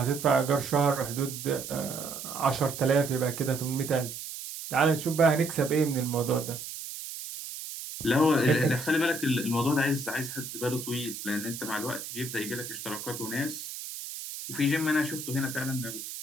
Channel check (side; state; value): right; noise; hiss, 9 dB below the sound